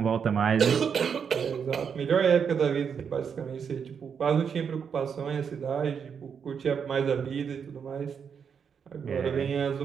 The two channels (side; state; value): left; quieter; 6.9 dB